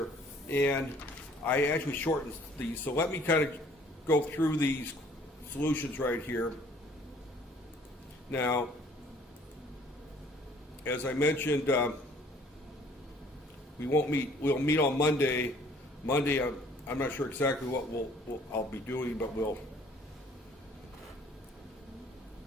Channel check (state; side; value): normal; both; correlation 0.56